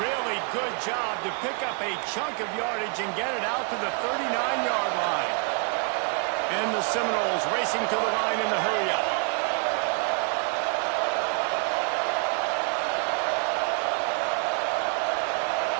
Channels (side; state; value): left; quieter; 37.8 dB